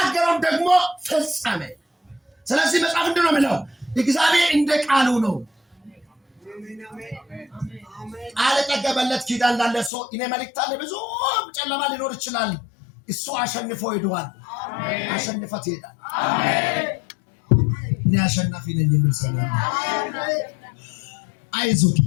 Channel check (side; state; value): right; drops out; at 9.9 s